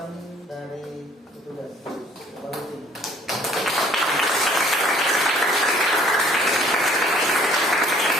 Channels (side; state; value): both; normal; correlation 0.57